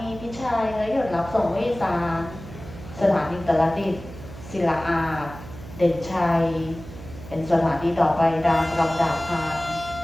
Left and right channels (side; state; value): right; noise; hum, 14 dB below the sound